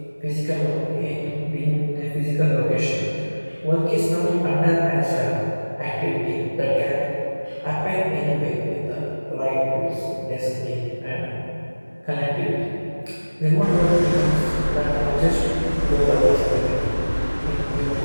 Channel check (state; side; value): inverted; both; correlation -1.00